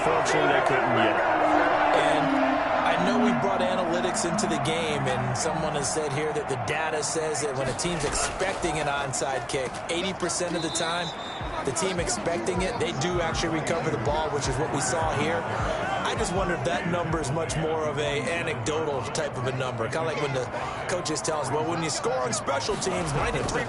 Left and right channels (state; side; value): identical; both; correlation 1.00